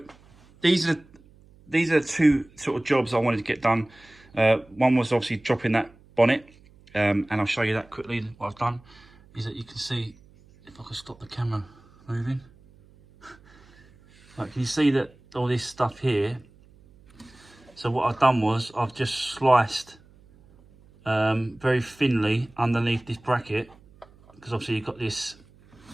these are two sort of jobs I wanted to get done. One was obviously dropping that bonnet, and I'll show you that quickly. What I've done is that you can see, if I can stop the camera moving, like, can you see that all this stuff here? So what I've done was I've just sliced very thinly underneath this bracket, because obviously you've got this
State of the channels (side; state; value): right; noise; hum, 27 dB below the sound